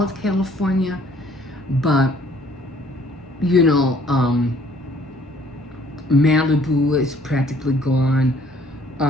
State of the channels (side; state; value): both; normal; correlation 0.60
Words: of California, but Malibu is practically gone.